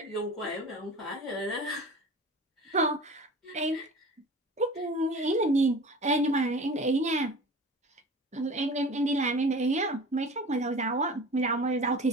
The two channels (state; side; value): normal; both; correlation 0.38